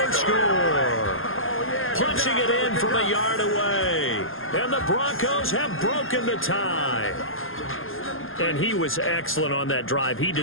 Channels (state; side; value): late; right; 0.60 ms